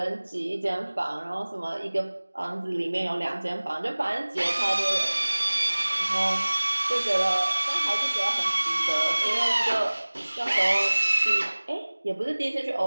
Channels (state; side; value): inverted; both; correlation -1.00